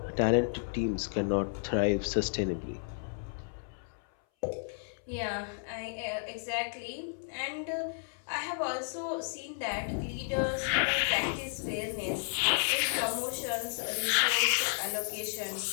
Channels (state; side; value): silent; right; 56 dB below the other